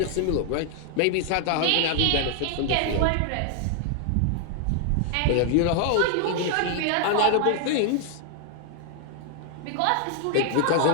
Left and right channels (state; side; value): different; both; correlation 0.00